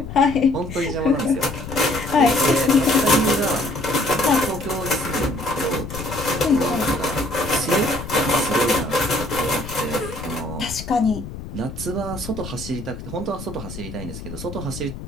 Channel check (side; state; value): left; noise; rumble, 10 dB below the sound